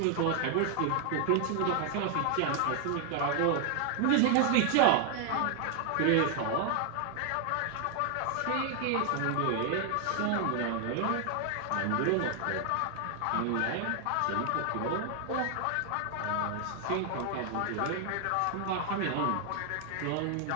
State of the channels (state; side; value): different; both; correlation 0.00